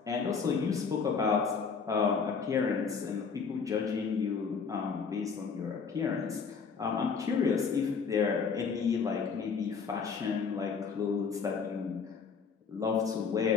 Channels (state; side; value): quieter; right; 5.7 dB